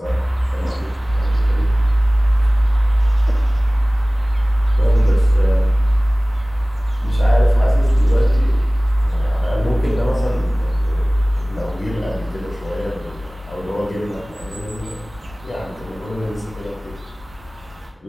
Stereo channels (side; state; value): both; normal; correlation 0.98